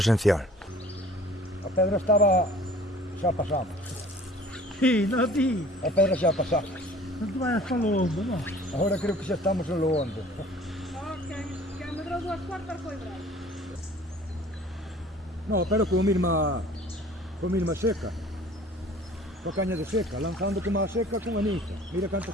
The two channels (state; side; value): normal; both; correlation 0.49